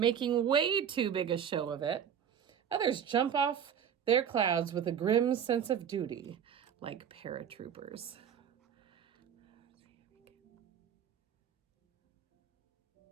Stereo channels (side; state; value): left; quieter; 8.5 dB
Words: way too big a show of it. Others jump off their clouds with a grim sense of duty, like paratroopers.